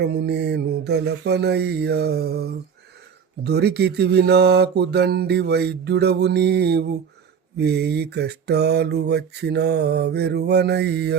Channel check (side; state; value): left; quieter; 7.0 dB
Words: నేను దలపనయ్యా. దొరికితివి నాకు దండి వైద్యుడవు నీవు, వేయి కష్టాలు వచ్చినా